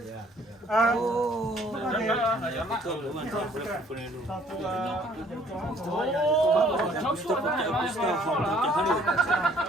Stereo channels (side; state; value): both; normal; correlation 0.59